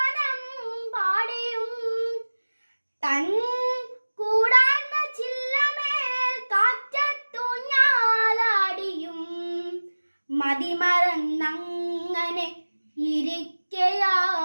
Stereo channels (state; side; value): inverted; both; correlation -1.00